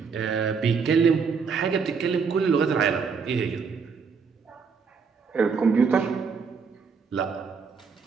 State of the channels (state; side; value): quieter; left; 5.5 dB